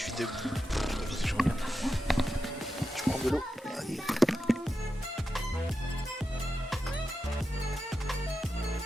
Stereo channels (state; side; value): normal; both; correlation 0.89